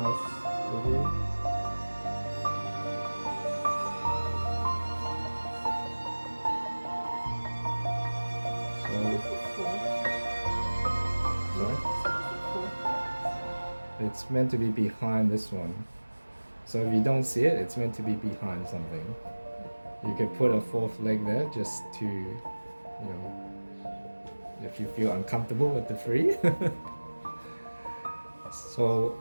It's meant to be behind this one. So if you don't see it, it's meant to be behind something. You could put a fourth leg there just to, if you feel uncomfortable with the three. So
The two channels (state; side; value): inverted; both; correlation -1.00